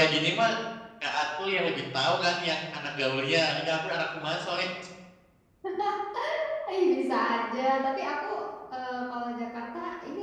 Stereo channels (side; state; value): both; identical; correlation 1.00